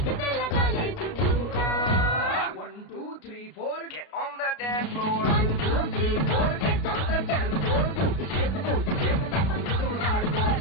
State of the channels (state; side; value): late; right; 33 ms